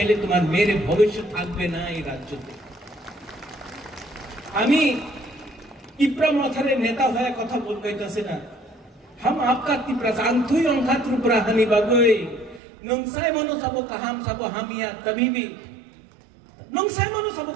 তোমার মেয়ের ভবিষ্যৎ থাকবে না এই রাজ্যতে। আমি ত্রিপুরা মাথারে নেতা হয়ে কথা বলতেছি না, हम आपका ত্রিপুরা জানতুই অংখা ত্রিপুরা হানি বাগৈ नंसाय मनो सबो कहम सबो हमिया, कभी भी नंसाय मनो सबो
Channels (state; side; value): drops out; left; at 12.6 s